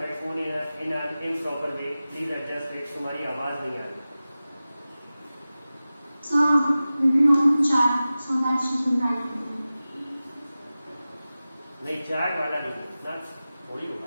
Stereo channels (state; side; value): inverted; both; correlation -0.96